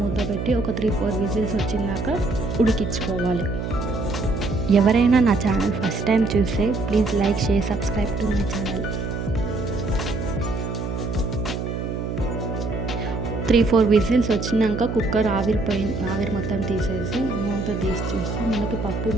మూత పెట్టి ఒక 3-4 విజిల్స్ వచ్చినాక ఉడికించుకోవాలి. ఎవరైనా నా ఛానల్ ఫస్ట్ టైం చూస్తే please like, share, subscribe to my channel. 3-4 whistles వచ్చినాక కుక్కర్ ఆవిరి మొత్తం తీసేసి మూత తీసి చూస్తే మనకి పప్పు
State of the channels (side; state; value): right; noise; hum, 4 dB below the sound